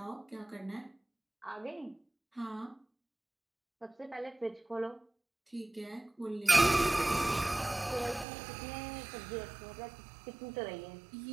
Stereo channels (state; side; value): drops out; left; at 8.2 s